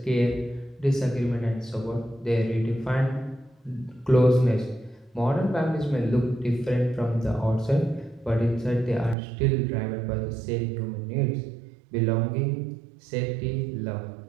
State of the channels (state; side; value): drops out; left; at 9.2 s